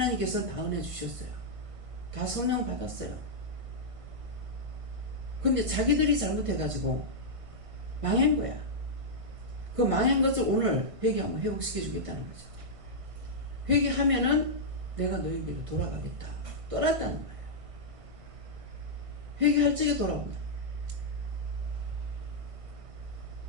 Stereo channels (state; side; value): late; left; 1.5 ms